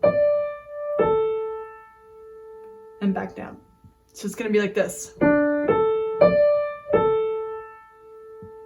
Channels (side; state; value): both; identical; correlation 1.00